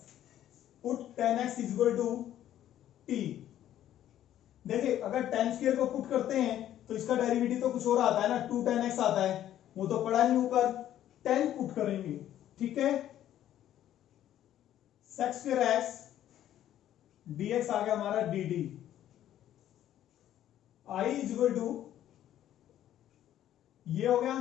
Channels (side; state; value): right; quieter; 11.9 dB